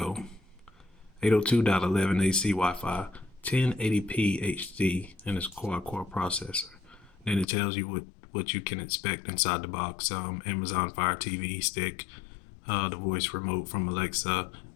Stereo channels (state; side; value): drops out; right; at 7.5 s